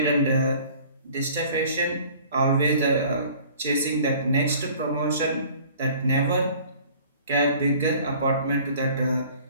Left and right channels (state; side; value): inverted; both; correlation -0.50